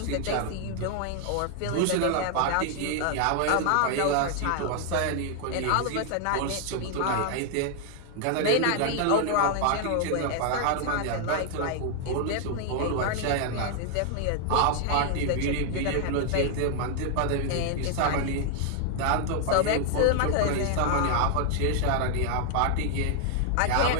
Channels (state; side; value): different; both; correlation 0.00